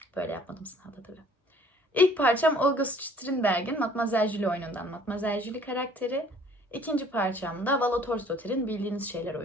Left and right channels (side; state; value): both; normal; correlation 0.55